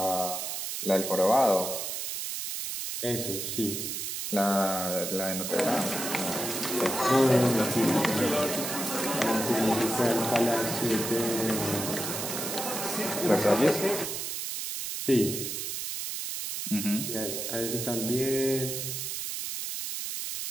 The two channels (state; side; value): noise; right; hiss, 4 dB below the sound